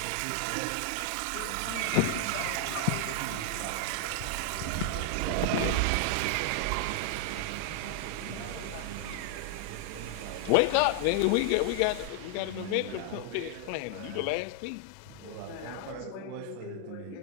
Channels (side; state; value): both; different; correlation 0.00